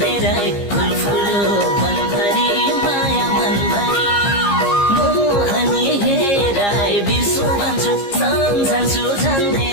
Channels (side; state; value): right; late; 15 ms